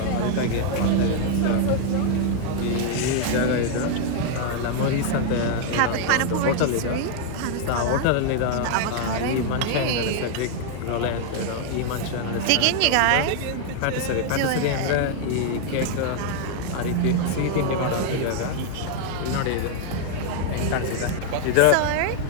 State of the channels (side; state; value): both; different; correlation 0.00